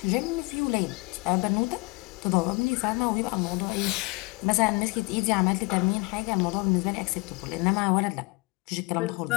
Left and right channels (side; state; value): right; quieter; 26.8 dB